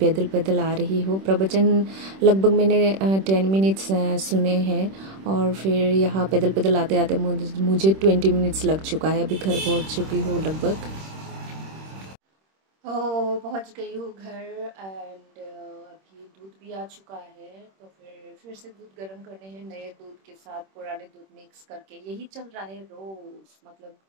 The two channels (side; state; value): left; late; 26 ms